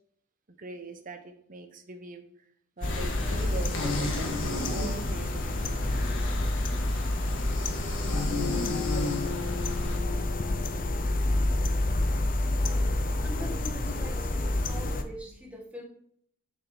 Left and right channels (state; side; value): normal; both; correlation 0.82